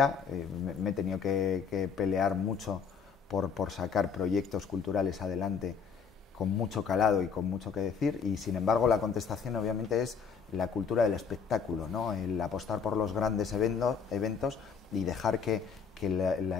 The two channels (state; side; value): quieter; right; 6.2 dB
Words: me he tenido que pelear mucho por sacar proyectos culturales adelante con mucho calado y con mucho que decir, y sin embargo la contestación obviamente es la cultura del espectáculo, ¿no? El apostar por los grandes eventos y dejar que